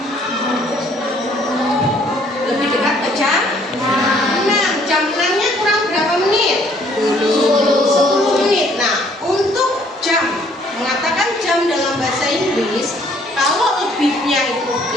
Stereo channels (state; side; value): normal; both; correlation 0.62